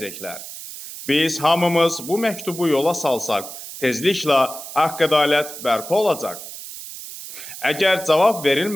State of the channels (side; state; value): right; noise; hiss, 12 dB below the sound